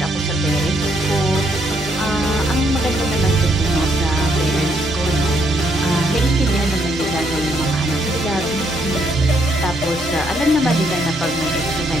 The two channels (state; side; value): normal; both; correlation 0.73